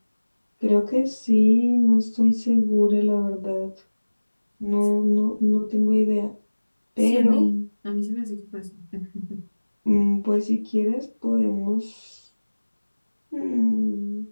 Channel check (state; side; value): inverted; both; correlation -1.00